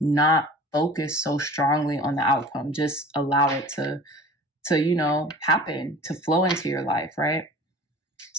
focus so strongly on the outcome. Just allow it to happen, to flow into your life, right?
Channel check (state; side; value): normal; both; correlation 0.41